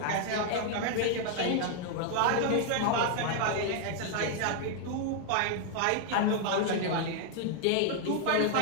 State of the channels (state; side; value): different; both; correlation 0.00